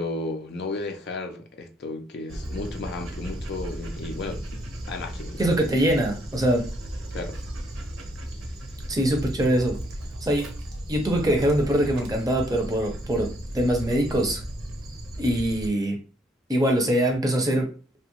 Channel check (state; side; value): normal; both; correlation 0.69